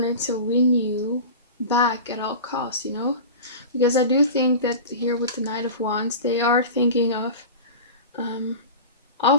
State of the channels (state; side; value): inverted; both; correlation -0.32